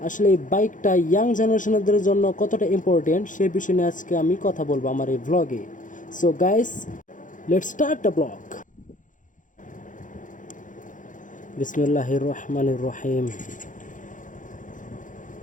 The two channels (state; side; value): late; right; 0.37 ms